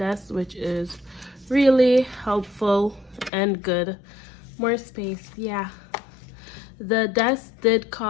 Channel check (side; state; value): right; drops out; at 3.3 s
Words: which is really helpful and good. More space. Yeah, the desk did